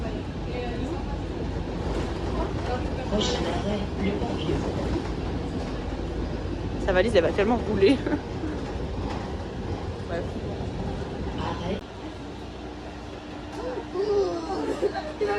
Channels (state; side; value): identical; both; correlation 1.00